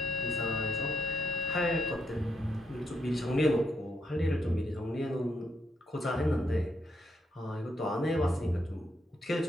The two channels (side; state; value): both; normal; correlation 0.78